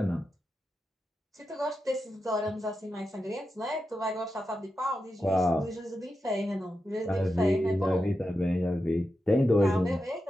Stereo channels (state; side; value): normal; both; correlation 0.89